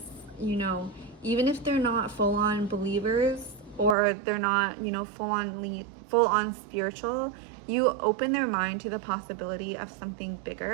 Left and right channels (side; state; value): left; drops out; at 4.0 s